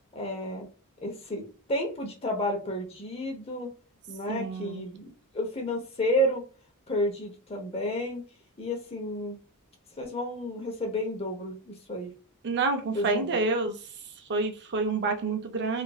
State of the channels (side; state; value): both; normal; correlation 0.11